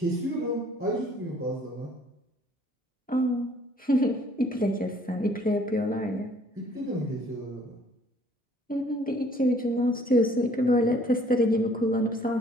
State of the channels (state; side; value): normal; both; correlation 0.59